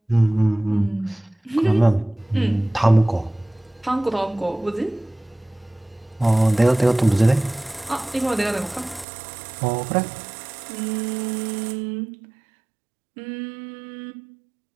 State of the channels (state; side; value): drops out; left; at 9.1 s